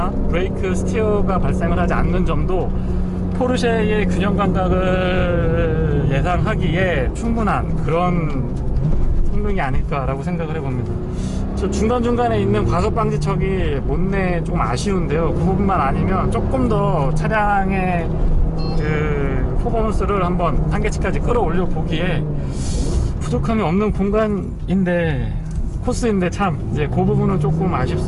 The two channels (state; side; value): identical; both; correlation 1.00